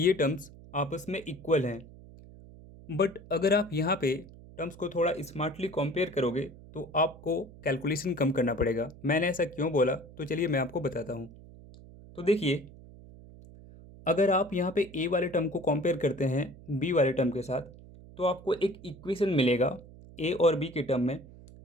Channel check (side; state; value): right; noise; hum, 19 dB below the sound